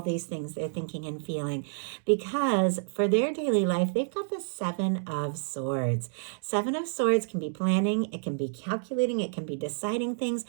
these things they're thinking and feeling, because for their daily life, they've got the Seven of Swords. Seven of Swords can be planning, it can be calculating, it can be deciding things,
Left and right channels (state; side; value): silent; left; digital silence